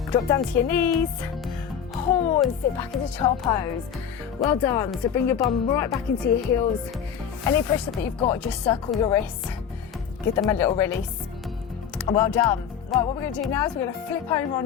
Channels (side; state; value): right; quieter; 8.1 dB